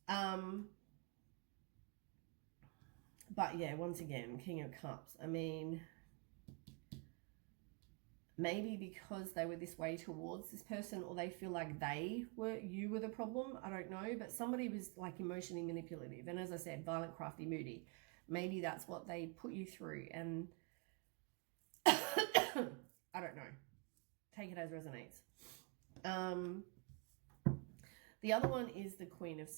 But yeah, once again, King of Cups. I mean, maybe because they were this way towards this person, or they feel like you were the problem. I don't know, but somebody was like emotionally manipulative. And as I said, violent, crafty, moody. Maybe that's what they put you through. And I don't know. Take it as resonates. The other one is the Queen of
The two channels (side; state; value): left; quieter; 30.5 dB